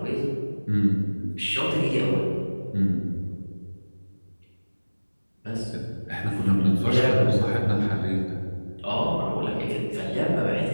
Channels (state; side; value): inverted; both; correlation -1.00